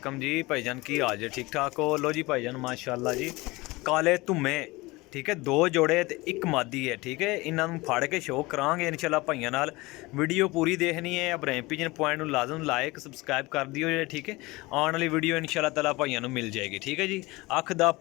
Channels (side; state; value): right; quieter; 22.2 dB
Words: जी भाईजान की हाल जे ठीक ठाक हो। लो जी भाईजान माशाल्लाह जी काले धुम्मे ठीक है, दो जोड़े ते एक मादी है ठीक है। इन्हों फड़ के शो करांगे इंशाल्लाह भाइयों नाल। वीडियो पूरी देखनी है। इब्राहिम पिजन पॉइंट में लाजम लाइक सबसक्राइब कर दियो जे ठीक है। आने वाली वीडियो इंशाल्लाह ताला भाइयों नूं मिल जाएगी ठीक है जी। अख दा